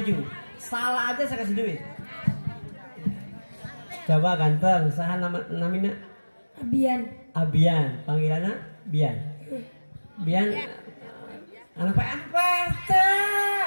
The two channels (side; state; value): both; inverted; correlation -1.00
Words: Salah aja saya kasih duit. Coba ganteng, saha namina? Abian, panggilannya Bian. Anak PRT.